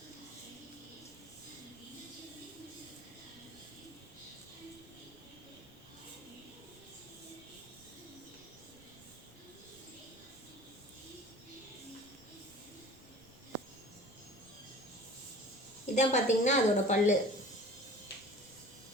இதான் பார்த்தீங்கன்னா அதோட பல்லு.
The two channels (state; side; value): noise; right; rumble, 26 dB below the sound